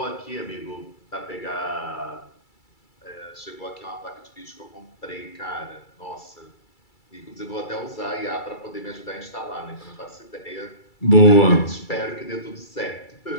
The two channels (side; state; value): right; late; 2.3 ms